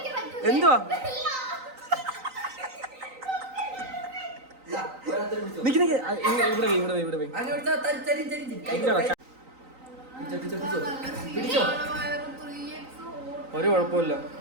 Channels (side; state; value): left; late; 3.9 ms